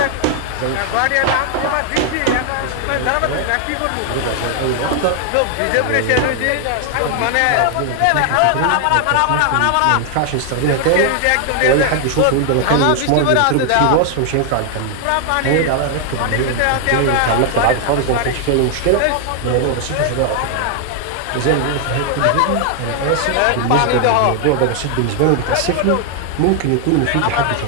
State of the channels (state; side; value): different; both; correlation 0.00